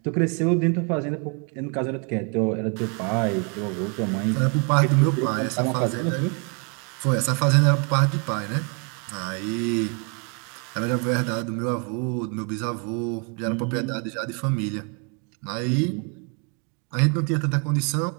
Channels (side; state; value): left; quieter; 37.1 dB